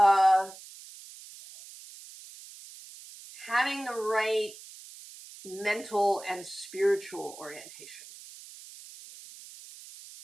having the right mental and spiritual orientation.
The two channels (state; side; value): noise; right; hiss, 17 dB below the sound